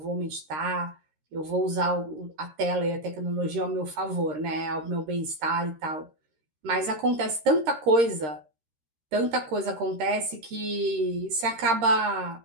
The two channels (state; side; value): late; left; 13 ms